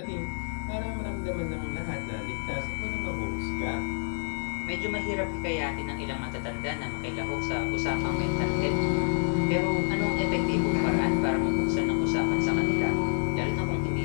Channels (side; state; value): right; silent; 59 dB below the other